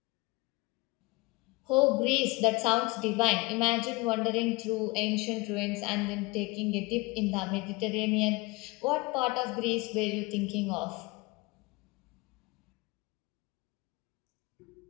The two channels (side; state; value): right; quieter; 24.0 dB